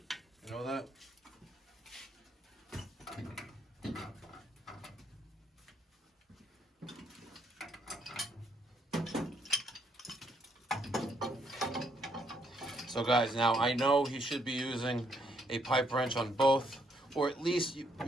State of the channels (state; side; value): normal; both; correlation 0.72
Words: You know that? So guys, now I know he should be using a pipe wrench on both, or at least